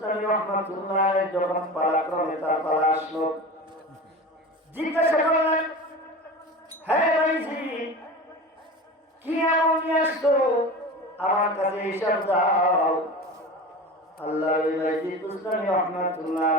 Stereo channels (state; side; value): normal; both; correlation 0.31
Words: রাহমাতুল্লাহ আলাইহি যখন পালাক্রমে তার পালা আসলো, জিজ্ঞাসা করলেন, হ্যাঁ বাইজিদ, কি এমন নিয়ে আসছো, আমার কাছে হিসাব দাও। আল্লাহর ওলি বাইজিদ বুস্তামি রাহমাতুল্লাহ